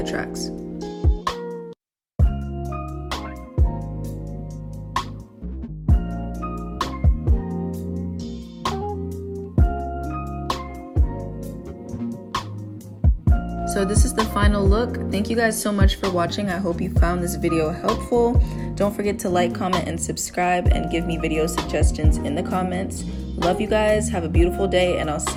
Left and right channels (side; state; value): both; identical; correlation 1.00